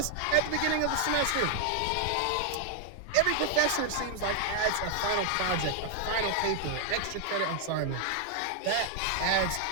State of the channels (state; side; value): different; both; correlation 0.00